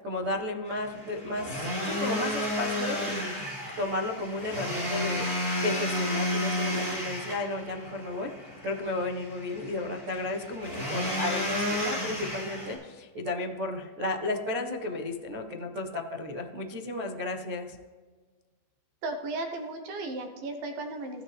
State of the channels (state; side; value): late; left; 14 ms